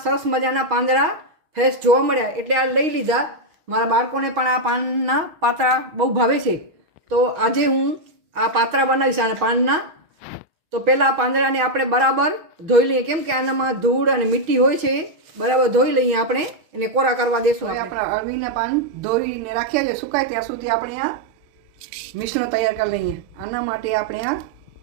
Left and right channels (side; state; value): left; late; 6.4 ms